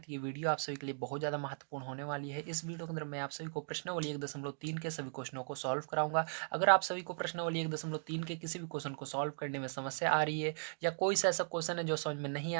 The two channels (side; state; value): left; silent; digital silence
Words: तो ये वीडियो आप सभी के लिए बहुत ज़्यादा महत्वपूर्ण होने वाली है। इस वीडियो के अंदर मैं आप सभी को प्रश्नावली 1.3 के सभी क्वेश्चनों को सॉल्व कराऊंगा। अगर आप सभी को प्रश्नावली 1.3 के किसी भी क्वेश्चन को सॉल्व करने में समस्या आ रही है या कोई सा ऐसा क्वेश्चन है जो समझ में नहीं